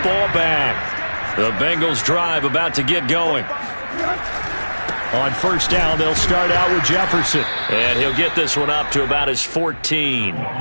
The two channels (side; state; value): both; inverted; correlation -1.00